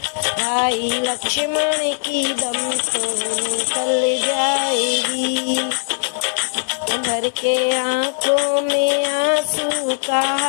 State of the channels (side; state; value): right; silent; 66 dB below the other